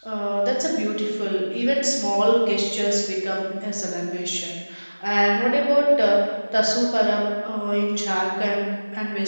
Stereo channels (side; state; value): both; inverted; correlation -1.00